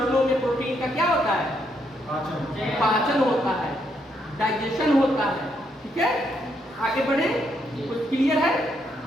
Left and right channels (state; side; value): normal; both; correlation 0.76